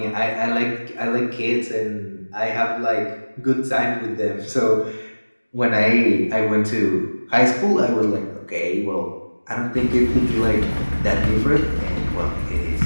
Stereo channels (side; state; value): both; inverted; correlation -1.00